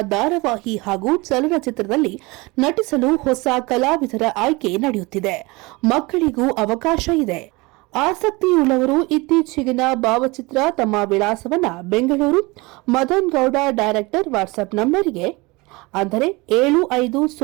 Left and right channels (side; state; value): left; quieter; 24.3 dB